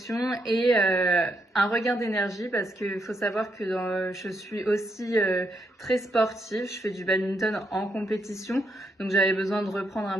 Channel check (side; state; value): both; normal; correlation 0.78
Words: et un regain d'énergie parce qu'il faut savoir que je suis aussi très sportive, je fais du badminton en compétition, donc j'avais besoin de reprendre un